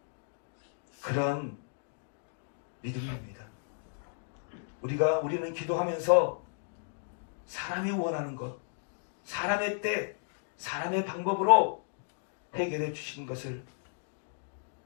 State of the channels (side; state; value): right; silent; digital silence